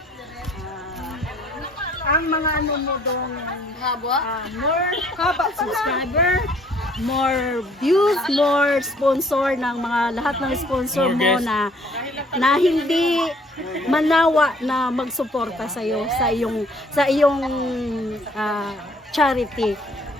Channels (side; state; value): both; normal; correlation 0.60